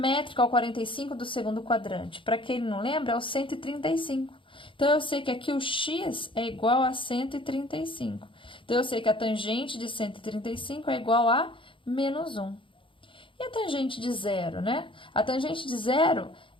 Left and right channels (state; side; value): late; right; 0.25 ms